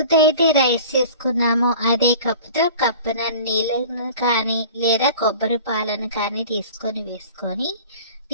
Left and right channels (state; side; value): inverted; both; correlation -0.42